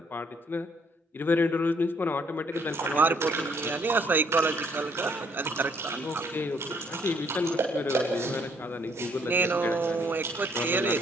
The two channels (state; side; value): normal; both; correlation 0.66